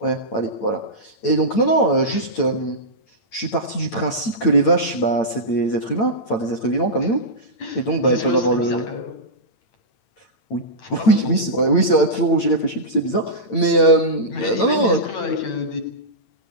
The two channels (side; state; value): right; late; 8.9 ms